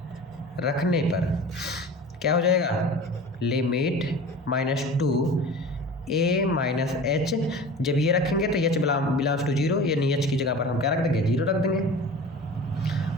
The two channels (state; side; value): normal; both; correlation 0.37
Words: रखने पर क्या हो जाएगा, लिमिट -2 a माइनस h, जब ये रखेंगे तो h बिलोंग्स टू 0, यानी h की जगह पर हम क्या रख देंगे, 0 रख देंगे,